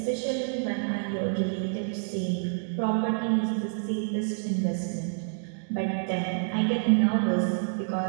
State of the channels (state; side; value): silent; left; digital silence